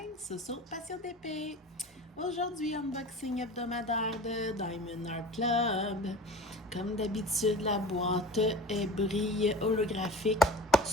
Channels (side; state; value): both; normal; correlation 0.37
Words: Soso Passion d'épée. Aujourd'hui, unboxing hebdomadaire de Diamond Art Club. Comme d'habitude, la boîte est brille holographique,